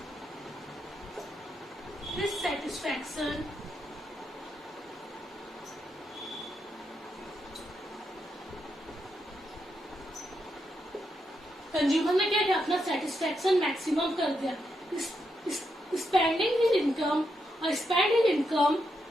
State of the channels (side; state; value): both; normal; correlation 0.83